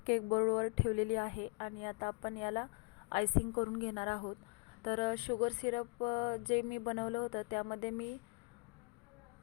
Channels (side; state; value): right; quieter; 34.0 dB